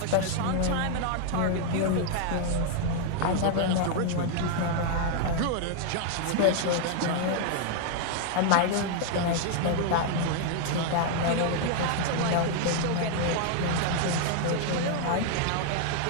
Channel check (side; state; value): both; different; correlation 0.00